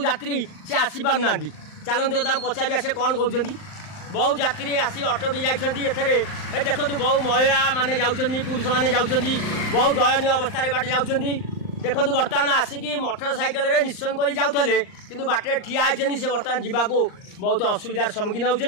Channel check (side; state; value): right; late; 39 ms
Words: यात्री से आसी पार ना चलते पचारिया से कौन कहते बहु यात्री आसी अटकी जाइए देखो बहु महिला माने जाउछंदी पुरुष माने जाउछंदी बहु दयनीय अवस्था बाटे जाउछंदी देखो बर्तमान आसिकी मोटरसाइकेल रे निश्चय कर जाऊे कि बाटे ठिया होती से बर्तमान जावाक बहुत असुविधार सम्मुखीन